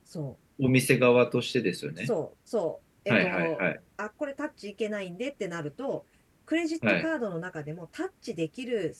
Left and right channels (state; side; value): identical; both; correlation 1.00